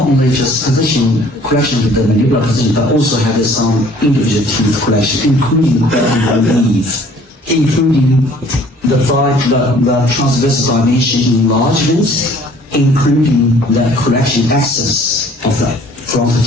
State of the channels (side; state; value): both; normal; correlation 0.55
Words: only just position correction of the mandibular position, but also have some individual teeth correction, including the relief, including the transversal dimension enlargements, including the correction axis of the front